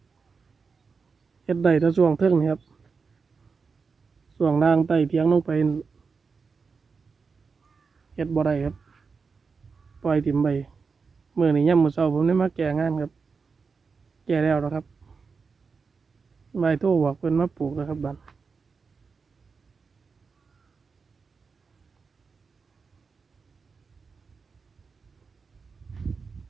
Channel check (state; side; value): quieter; left; 5.1 dB